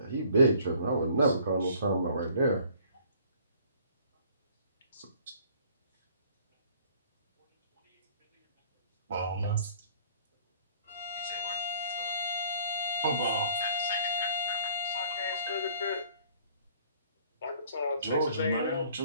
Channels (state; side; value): inverted; both; correlation -0.55